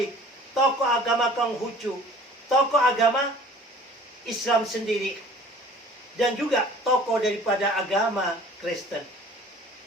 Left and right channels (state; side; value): normal; both; correlation 0.48